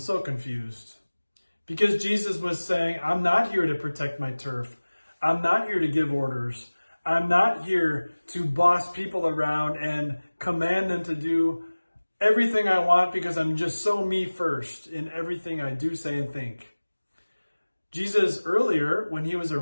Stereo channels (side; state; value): both; inverted; correlation -1.00